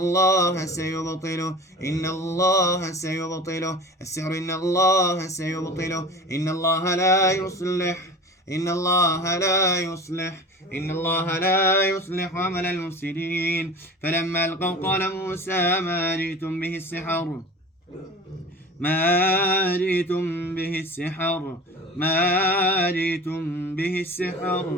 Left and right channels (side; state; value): both; normal; correlation 0.37